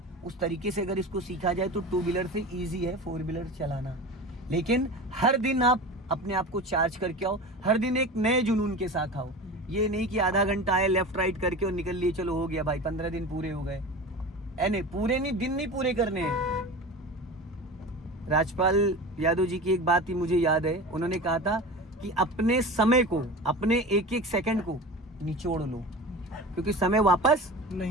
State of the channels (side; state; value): both; normal; correlation 0.32